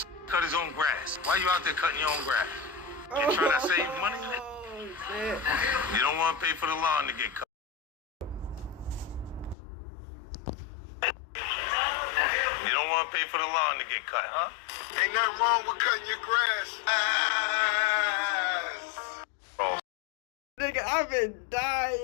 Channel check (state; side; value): drops out; right; at 9.6 s